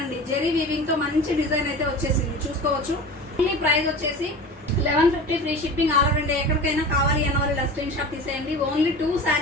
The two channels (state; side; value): normal; both; correlation 0.34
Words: అండి. జెరీ వీవింగ్ తో మంచి డిజైన్ అయితే వచ్చేసింది, చూసుకోవచ్చు. ఓన్లీ ప్రైస్ వచ్చేసి 1150, free shipping all over India. ఎక్కడికైనా కావాలి అన్న వాళ్ళు ఇలా స్క్రీన్ షాట్ తీసేయండి. ఓన్లీ 2